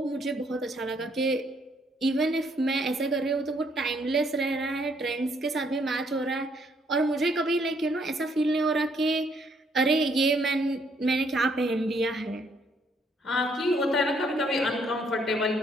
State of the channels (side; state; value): both; normal; correlation 0.69